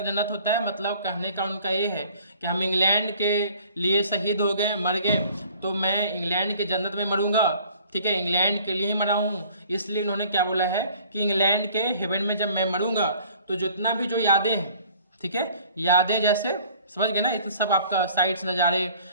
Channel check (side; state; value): both; inverted; correlation -0.53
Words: जन्नत होता है, मतलब कहने का उनका ये है कि हम इंग्लैंड के लिए शहीद हो गए, मर गए, तो मैं इंग्लैंड की जन्नत में मरूंगा, ठीक है, इंग्लैंड के लिए ही मरा हूँ। इसलिए उन्होंने क्या बोला है कि इंग्लैंड के हेवन में जब मैं मरूंगा तो जितना भी जो यादें हैं, ठीक है, यादें जैसे समझ गए ना, इतना सब आपका साइट्स नज़ारे